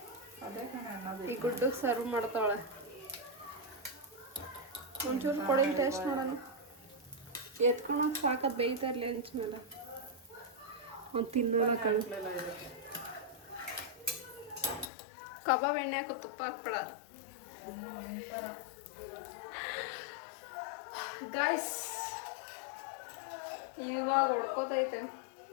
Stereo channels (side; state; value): right; drops out; at 14.9 s